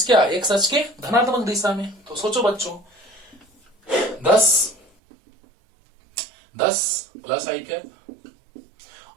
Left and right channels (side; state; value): left; drops out; at 4.9 s